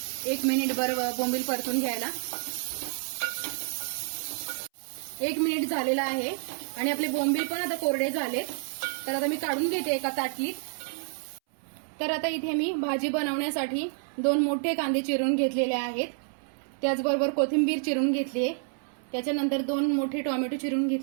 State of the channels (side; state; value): left; silent; 59 dB below the other